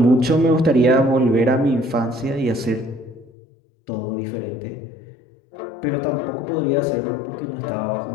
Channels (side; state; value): right; drops out; at 3.3 s